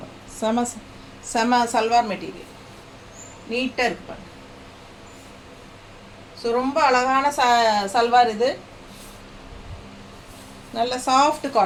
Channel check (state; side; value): identical; both; correlation 1.00